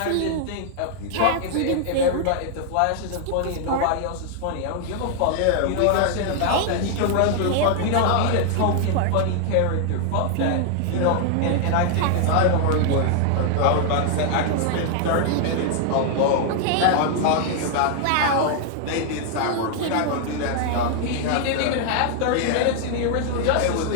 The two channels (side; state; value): both; different; correlation 0.00